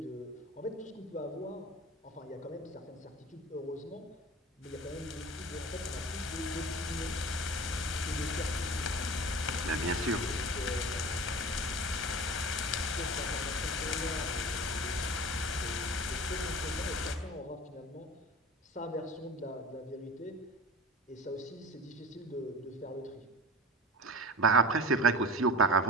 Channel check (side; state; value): both; normal; correlation 0.36